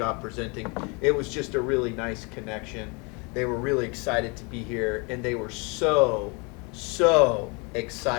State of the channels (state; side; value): quieter; right; 30.8 dB